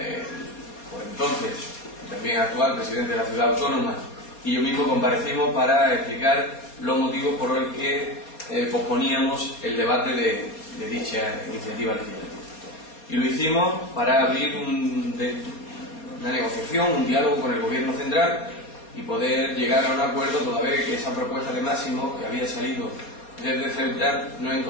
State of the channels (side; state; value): right; late; 4.2 ms